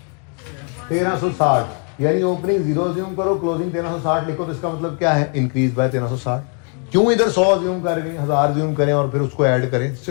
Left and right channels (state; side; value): quieter; right; 37.6 dB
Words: 1360, यानी ओपनिंग 0 अज्यूम करो, क्लोजिंग 1360 लिखो, तो इसका मतलब क्या है, इंक्रीज बाय 1360। क्यों इधर 100 अज्यूम करेंगे, 1000 अज्यूम करें और फिर उसको ऐड करें,